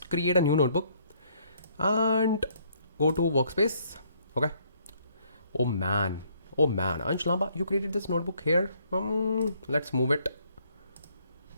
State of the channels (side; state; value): both; inverted; correlation -0.67